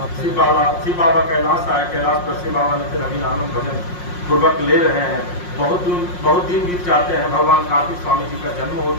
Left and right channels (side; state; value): right; late; 5.6 ms